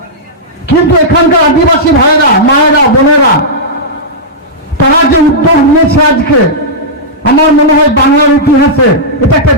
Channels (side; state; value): both; normal; correlation -0.11